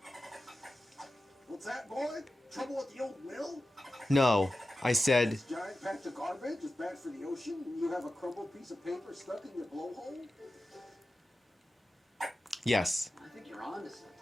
What's that, boy? Trouble with the old mill? No, I said This giant patch of garbage is bad for the ocean, and you have a crumbled piece of paper stuck in your blowhole? yes. I think you're onto something.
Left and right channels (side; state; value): both; normal; correlation 0.93